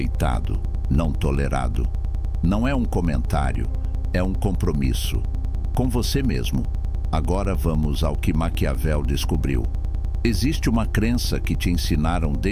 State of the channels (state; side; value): identical; both; correlation 1.00